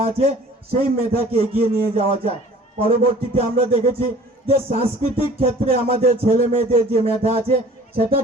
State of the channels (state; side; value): normal; both; correlation 0.48